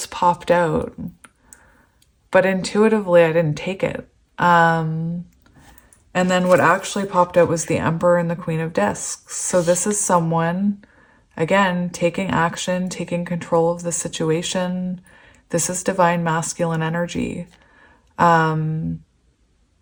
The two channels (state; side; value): identical; both; correlation 1.00